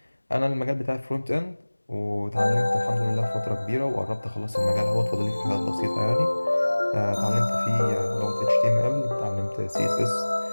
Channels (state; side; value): inverted; both; correlation -1.00